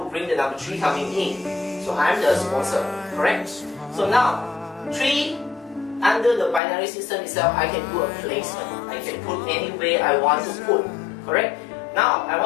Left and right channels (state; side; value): drops out; right; at 6.6 s